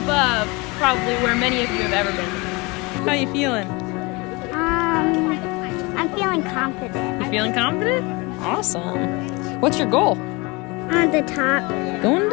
probably where many of you have ever been. How you feeling? I'm feeling confident. You feeling confident? Awesome. What's your goal? On the top. Going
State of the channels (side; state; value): right; quieter; 26.0 dB